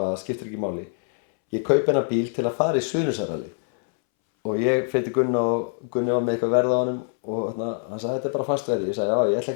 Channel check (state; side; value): silent; right; 63 dB below the other